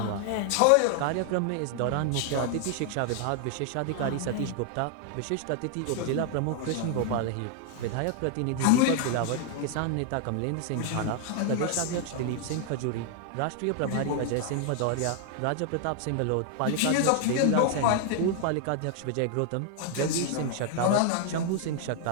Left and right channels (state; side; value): different; both; correlation 0.00